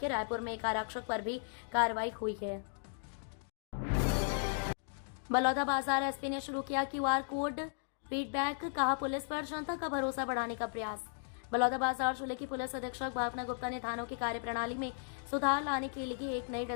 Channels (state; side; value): silent; right; digital silence